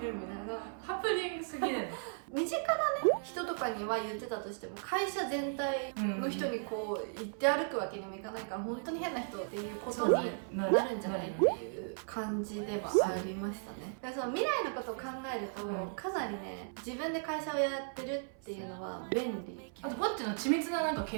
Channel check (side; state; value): left; silent; 54 dB below the other